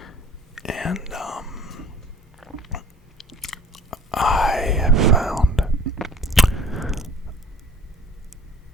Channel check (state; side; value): normal; both; correlation 0.50